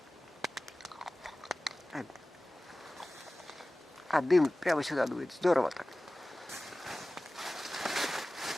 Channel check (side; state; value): both; normal; correlation 0.97